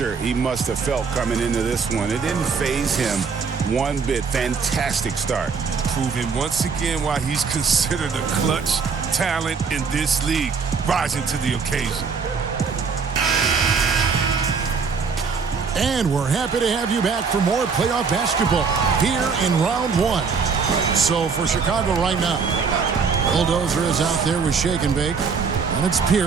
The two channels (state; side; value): quieter; left; 5.4 dB